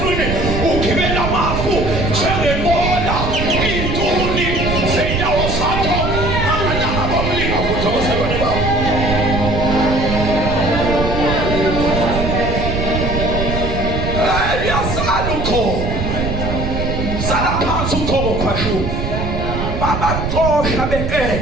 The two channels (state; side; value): noise; right; rumble, 2 dB below the sound